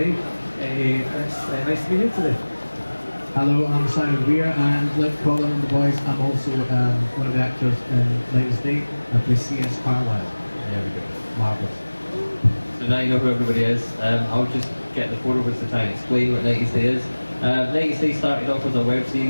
It's nice to be here today. Hello, I'm Simon Weir, and like Colin and the boys, I'm also one of the actors in 90s Day. I play C.S. Carlisle. There we go. Marvellous. So now you know who everybody is. I'll just get the 4 of us to try and explain what 90s Day is. 90s Day started off as a web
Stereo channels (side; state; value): both; inverted; correlation -1.00